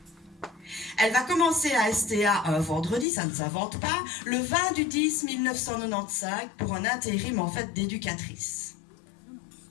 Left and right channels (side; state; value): right; drops out; at 3.1 s